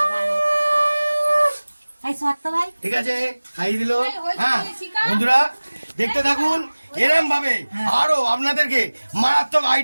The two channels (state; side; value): inverted; both; correlation -1.00